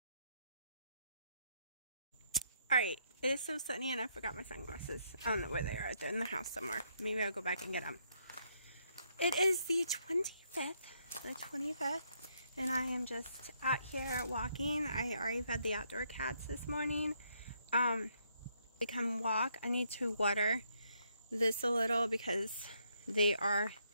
Alright, it is so sunny and I forgot my sunglasses. I don't know where they are. They're in the house somewhere. Maybe I'll go back and get them. It is the 25th, and I am just out here walking. I already fed the outdoor cats this morning. They come walk. I need to water this a little because they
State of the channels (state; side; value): inverted; both; correlation -0.74